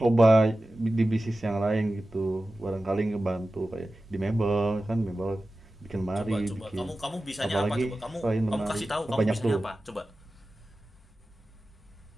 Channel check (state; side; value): normal; both; correlation 0.95